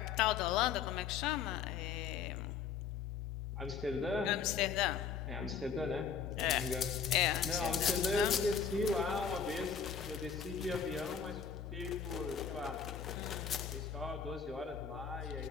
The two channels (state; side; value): quieter; right; 6.7 dB